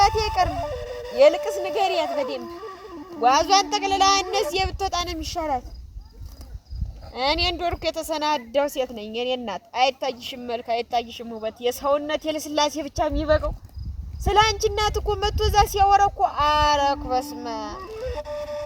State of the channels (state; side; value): identical; both; correlation 1.00